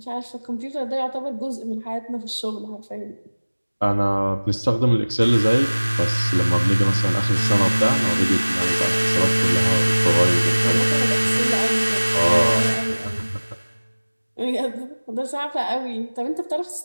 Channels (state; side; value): inverted; both; correlation -1.00